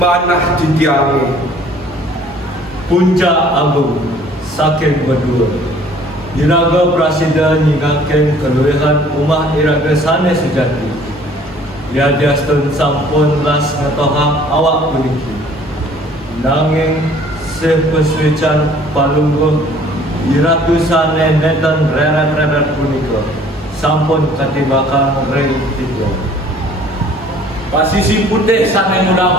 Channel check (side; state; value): both; normal; correlation 0.54